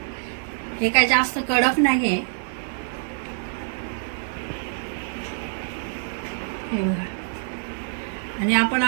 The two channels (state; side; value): silent; left; 61 dB below the other